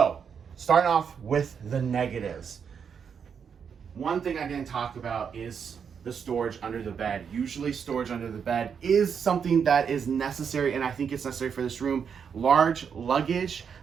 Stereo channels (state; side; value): quieter; left; 6.9 dB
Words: starting off with the negatives. One thing I didn't talk about is the storage under the bed. Usually storage under the bed is something that is necessary, and I think it's necessary for this room. Large luggage,